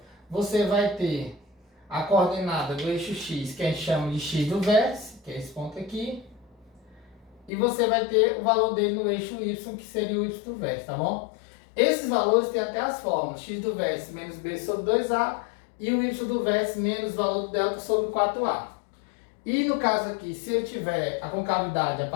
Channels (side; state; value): right; drops out; at 7.5 s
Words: você vai ter a coordenada do eixo x, que a gente chama de x do vértice, que é esse ponto aqui. E você vai ter o valor dele no eixo y, que seria o y do vértice, tá bom? Esses valores têm até as fórmulas, x do vértice menos b sobre 2a, e o y do vértice menos o valor do delta sobre 4a. E no caso aqui, se ele tiver a concavidade, a